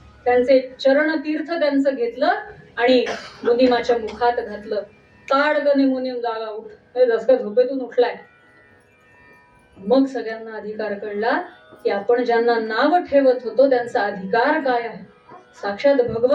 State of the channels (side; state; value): both; identical; correlation 1.00